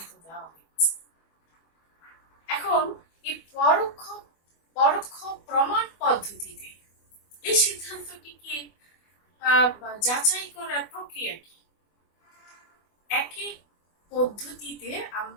দেওয়া হয়েছে। এখন এই পরোক্ষ প্রমাণ পদ্ধতিতে এই সিদ্ধান্তটিকে যাচাই করার প্রক্রিয়া কি? এক এক পদ্ধতিতে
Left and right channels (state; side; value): late; right; 24 ms